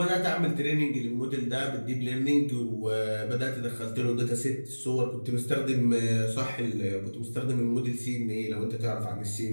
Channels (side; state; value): both; inverted; correlation -1.00